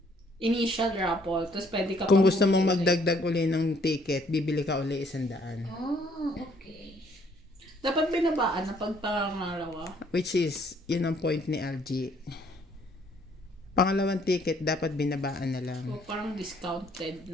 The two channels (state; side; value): normal; both; correlation 0.64